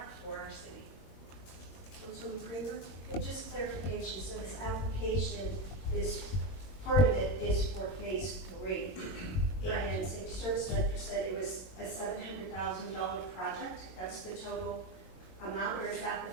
for our city. Councilman Kramer? Okay, just clarification, so this application is, part of it is for phase 3. Correct. And Safety Service Director said it was a $700,000 project, that's the total amount, or is that the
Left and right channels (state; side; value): late; right; 22 ms